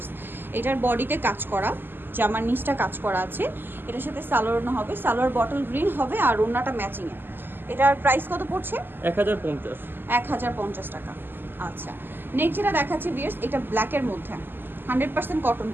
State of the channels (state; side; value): late; left; 0.096 ms